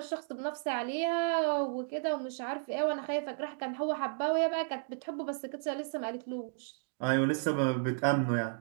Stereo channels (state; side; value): silent; left; digital silence